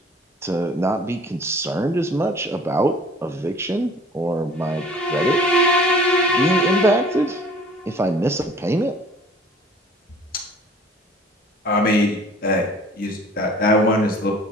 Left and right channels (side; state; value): both; normal; correlation 0.49